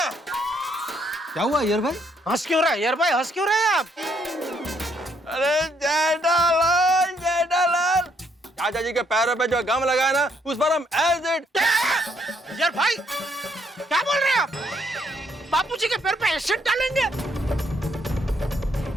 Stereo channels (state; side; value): normal; both; correlation 0.70